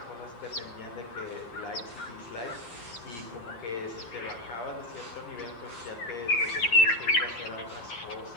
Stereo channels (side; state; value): right; late; 8.7 ms